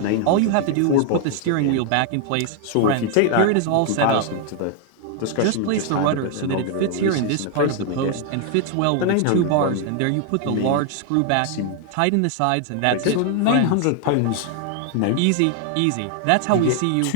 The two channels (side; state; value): both; different; correlation 0.00